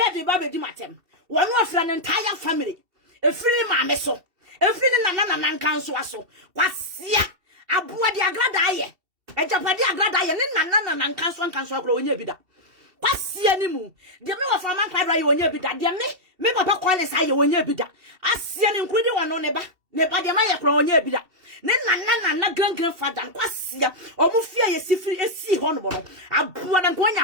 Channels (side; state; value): left; late; 2.7 ms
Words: the Baby Dimatem. One was an entire family. A free mammeso. A free Nana council. Quasia a boy de agradaye. A Japadi agradaye, and Nana and council growing your bidder. Quasia nimu. The middle of a man cried when you bidder. Dear me, Papa Qualis, I when you bidder. I see an including one on neighbor. Never the Maya crown ye bida. Nana grandfather, Quasia, or Mufia, a sea honorable. A poor and going